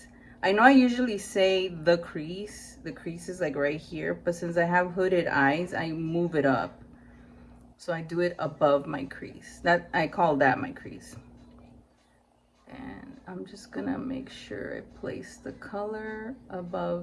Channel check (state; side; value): identical; both; correlation 1.00